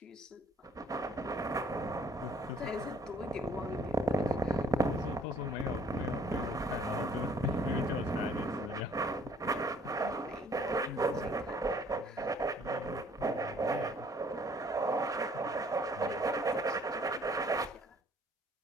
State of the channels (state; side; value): normal; both; correlation 0.58